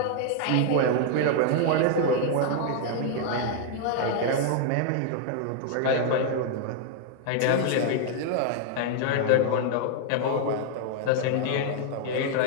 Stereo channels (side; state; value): both; different; correlation 0.00